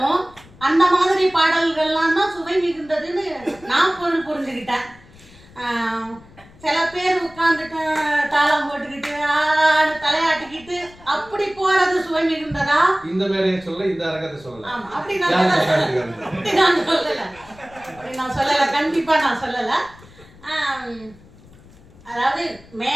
அந்த மாதிரி பாடல்கள்லாம் தான் சுவை மிகுந்ததுன்னு நான் புரிஞ்சுக்கிட்டேன். சில பேர் உட்காந்துட்டு தாளம் போட்டுக்கிட்டு தலையாட்டிக்கிட்டு அப்படி போறது சுவை மிகுந்ததா? இந்த மேடையை சொல்ல, இந்த அரங்கத்தை சொல்லல. ஆமா, அப்படி நான் சொல்லல, கண்டிப்பா நான் சொல்லல. அதாவது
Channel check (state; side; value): noise; left; rumble, 23 dB below the sound